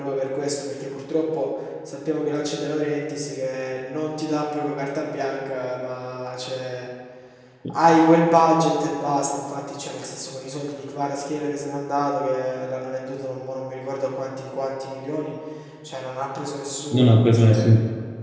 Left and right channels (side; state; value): both; identical; correlation 1.00